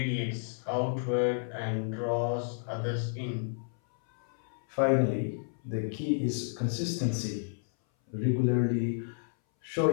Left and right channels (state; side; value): silent; right; 57 dB below the other